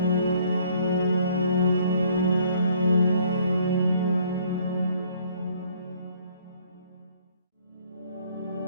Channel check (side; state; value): both; inverted; correlation -0.61